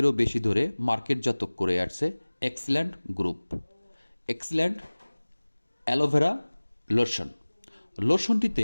বেশি ধরে মার্কেটজাত করে আসছে excellent group excellent aloe vera lotion.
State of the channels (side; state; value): both; inverted; correlation -1.00